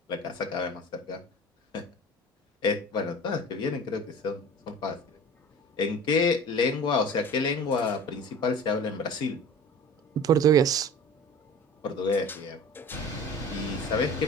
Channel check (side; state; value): both; normal; correlation 0.39